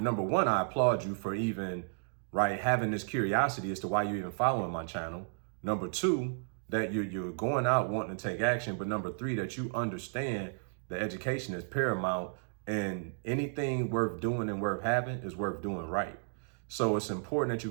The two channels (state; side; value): silent; left; digital silence